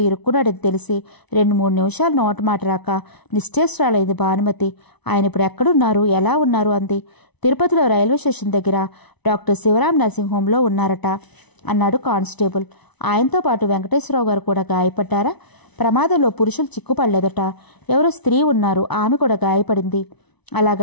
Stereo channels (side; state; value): right; late; 1.0 ms